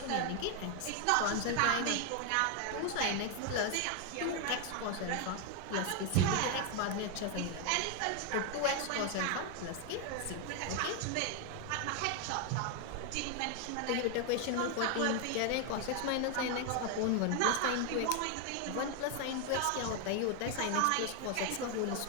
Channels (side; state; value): both; different; correlation 0.01